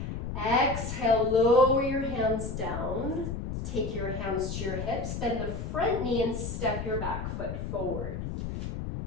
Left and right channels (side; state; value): left; noise; rumble, 5 dB below the sound